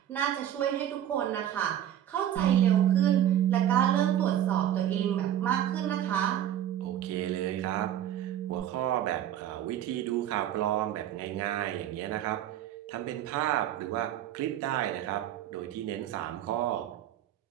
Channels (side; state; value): left; quieter; 11.3 dB